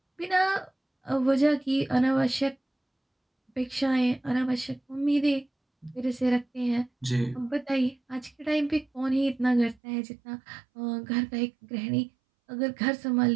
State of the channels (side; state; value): left; drops out; at 9.8 s